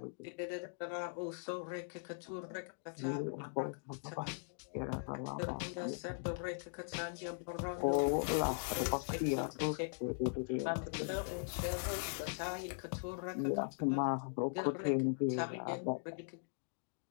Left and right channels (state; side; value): silent; right; digital silence